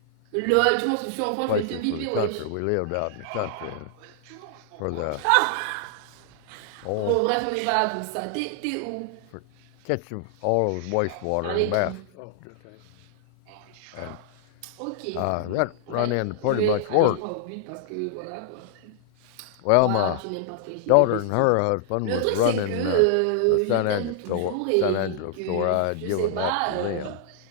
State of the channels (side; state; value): both; different; correlation -0.01